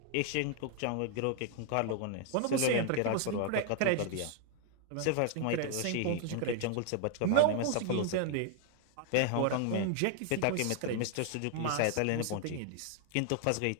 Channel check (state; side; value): different; both; correlation 0.00